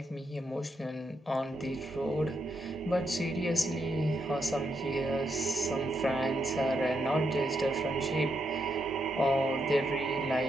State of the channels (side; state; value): both; normal; correlation 0.81